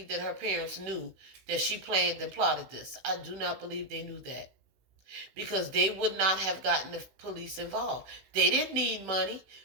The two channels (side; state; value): left; late; 15 ms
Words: that her parents knew that she planned and plotted this. I do not believe they knew that. Because they would not have gotten the police involved. They didn't need money.